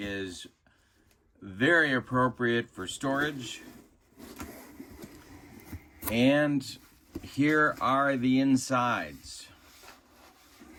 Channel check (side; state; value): both; identical; correlation 1.00